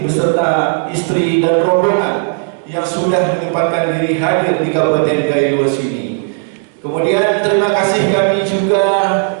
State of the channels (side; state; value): left; silent; 64 dB below the other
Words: istri dan rombongan yang sudah menyempatkan diri hadir di Kabupaten Gaylues ini. Kemudian terima kasih kami juga